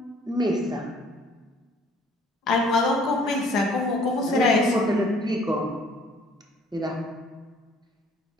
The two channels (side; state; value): both; normal; correlation 0.57